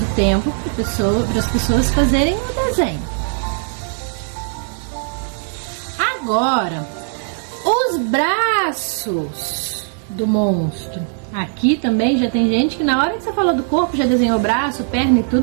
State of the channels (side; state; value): left; silent; digital silence